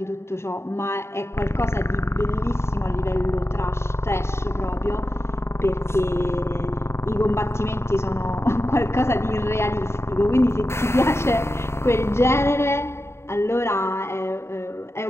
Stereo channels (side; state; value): right; late; 0.13 ms